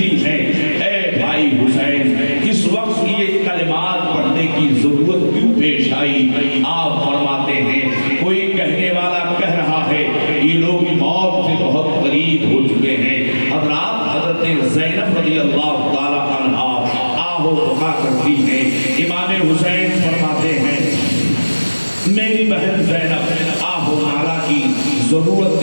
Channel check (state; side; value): inverted; both; correlation -1.00